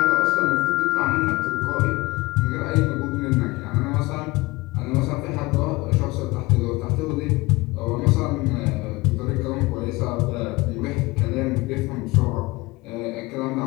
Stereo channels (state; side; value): quieter; right; 21.5 dB